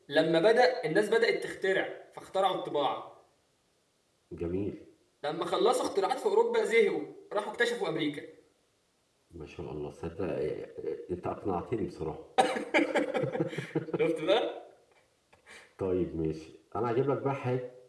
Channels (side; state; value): both; identical; correlation 1.00